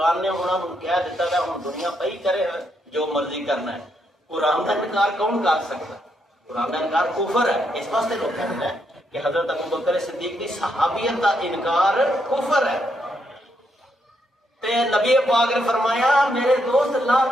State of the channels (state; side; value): normal; both; correlation 0.78